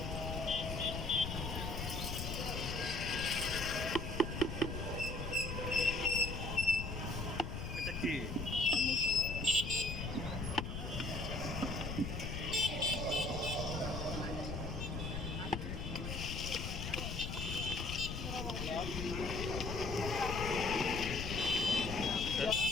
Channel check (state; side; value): noise; left; rumble, 4 dB below the sound